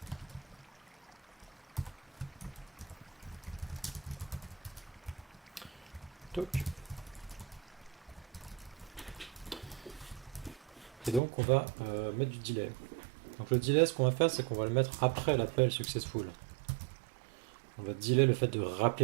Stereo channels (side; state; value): left; drops out; at 11.2 s